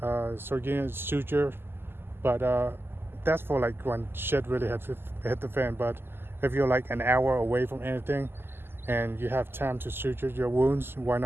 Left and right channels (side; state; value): left; late; 0.11 ms